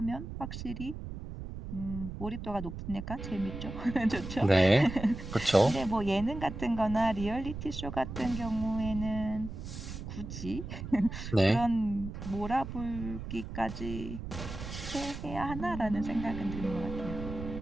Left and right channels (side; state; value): right; noise; rumble, 8 dB below the sound